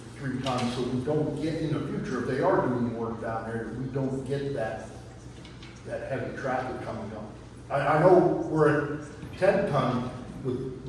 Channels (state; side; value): identical; both; correlation 1.00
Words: 3 tons so we don't get in the future, if they are doing work down there, we don't get that heavy traffic coming up. I know we're at 10 ton with